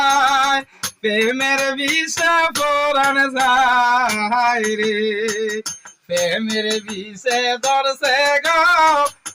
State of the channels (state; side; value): identical; both; correlation 1.00